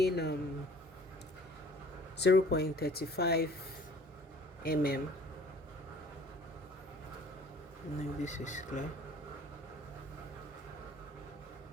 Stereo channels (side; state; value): both; normal; correlation 0.53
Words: 0.35 mm. No, this is clear.